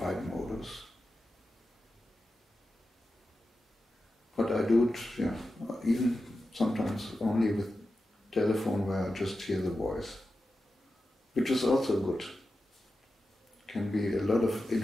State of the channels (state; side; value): normal; both; correlation 0.91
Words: modus. But I do it, even sometimes only with telephone where I just hear the voice, which is also good. Can be a lot of